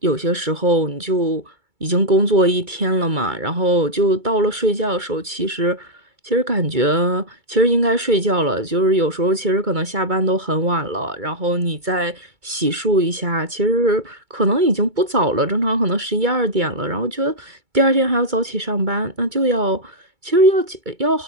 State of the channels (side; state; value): left; late; 2.3 ms